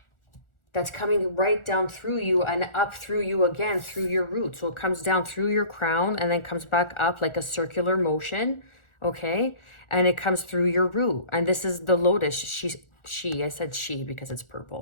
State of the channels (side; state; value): right; late; 1.4 ms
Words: that's coming right down through you and up through you again through your root. So it comes down through your crown and then comes back up like a circular motion, okay? And it comes through your root. And this is the lotus. I said she because it's